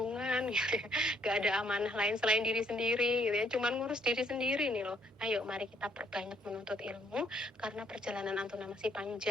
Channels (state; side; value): normal; both; correlation 0.68